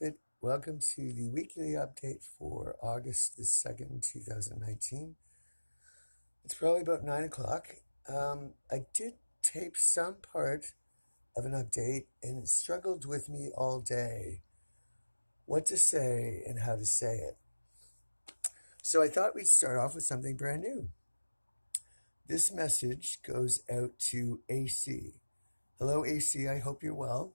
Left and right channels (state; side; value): inverted; both; correlation -1.00